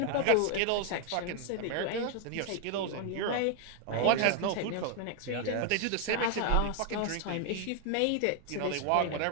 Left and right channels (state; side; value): different; both; correlation 0.00